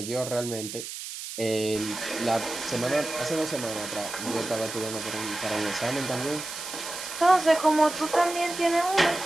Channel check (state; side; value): noise; right; hiss, 9 dB below the sound